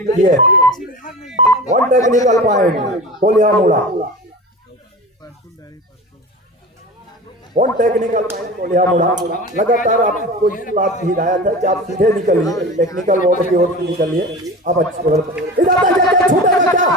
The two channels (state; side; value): normal; both; correlation 0.33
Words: किए। 1 टेक्निकल पॉइंट कोल्हा मुड़ा, 1 टेक्निकल पॉइंट कोल्हा मुड़ा। लगातार आपको इस बात की हिदायत है कि आप सीधे निकलिए, टेक्निकल बोर्ड की ओर से निकलिए। अब अच्छी